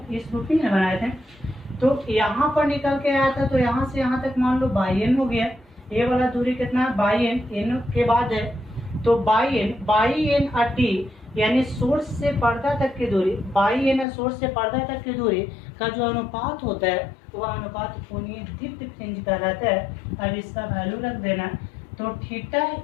इस रूपी में बनाए थे। तो यहाँ पर निकल के आया था, तो यहाँ से यहाँ तक मान लो बाई एन हो गया। ये वाला दूरी कितना है, बाई एन के बाद है, तो बाई एन टी, यानी सोर्स से पर्दा तक की दूरी, बाई एन सोर्स से पर्दा तक की दूरी का जो अनुपात होता है वह अनुपात कोणीय दीप्ति फ्रिंज कहलाता है। अब इसका वैल्यू रख देना, तो थीटा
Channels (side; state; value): right; drops out; at 14.1 s